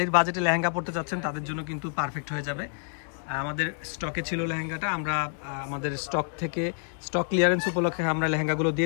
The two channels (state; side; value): silent; right; 55 dB below the other